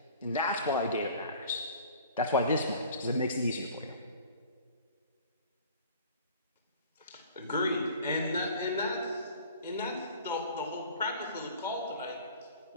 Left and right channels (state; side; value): inverted; both; correlation -0.46